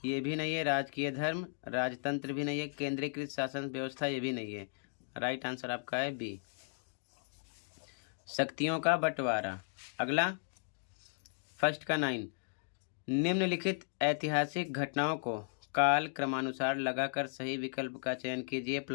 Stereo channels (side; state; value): right; silent; digital silence